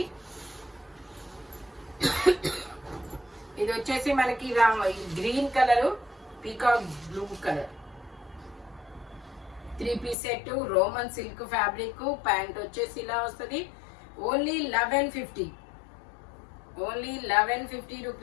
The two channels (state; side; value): drops out; right; at 10.2 s